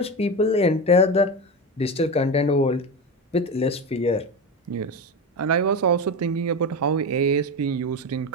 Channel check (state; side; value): normal; both; correlation 0.20